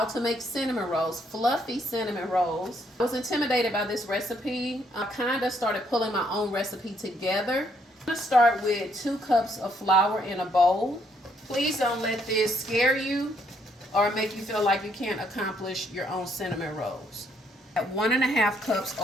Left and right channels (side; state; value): both; normal; correlation 0.71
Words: to make cinnamon rolls, fluffy cinnamon rolls. I was intimidated by this recipe. I kind of started pulling my own recipe together. I'm going to start with 2 cups of flour in a bowl. Please don't let this scare you or make you feel like you can't accomplish your own cinnamon rolls. At 1.5 cups